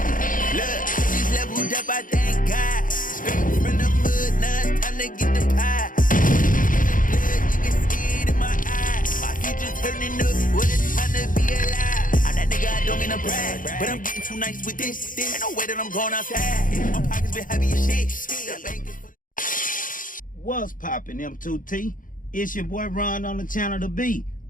But I'm getting too nice with this. Ain't no way that I'm going outside. My pockets been heavy as shit. What's poppin', M2T? It's your boy Ron on the channel to be.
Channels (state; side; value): late; right; 0.39 ms